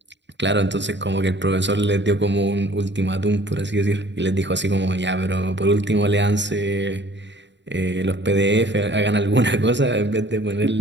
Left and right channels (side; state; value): left; late; 0.52 ms